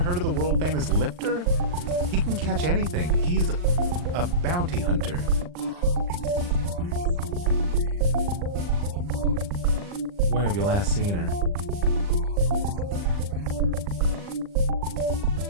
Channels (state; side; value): late; left; 39 ms